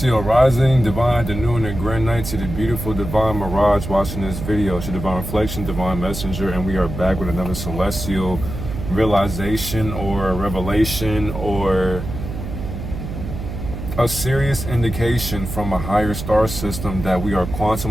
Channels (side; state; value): right; noise; hum, 7 dB below the sound